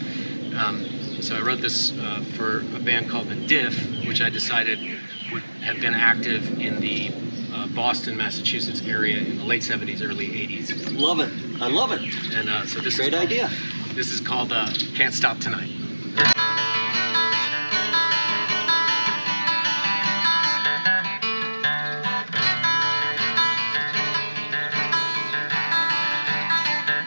So I wrote this for a band called The Diff, which I decided would have been active in the Boston, Massachusetts area in the late 70s, early 80s. Love it. I love it. And so this Great idea. This is called Can't Stop Tonight.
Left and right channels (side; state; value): both; inverted; correlation -1.00